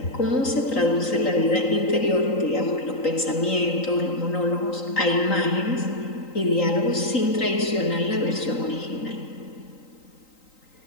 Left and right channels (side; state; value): right; late; 3.9 ms